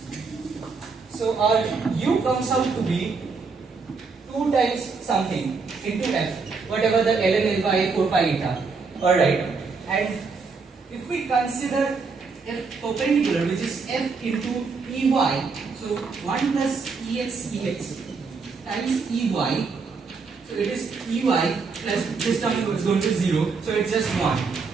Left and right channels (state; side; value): quieter; left; 4.7 dB